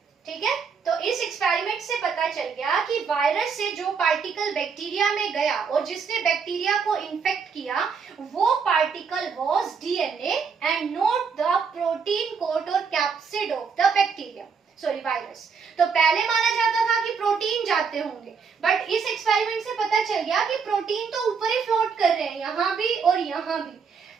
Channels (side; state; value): left; quieter; 5.8 dB